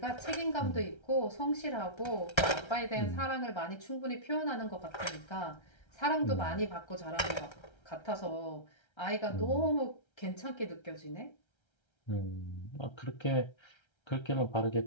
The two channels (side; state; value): right; late; 1.3 ms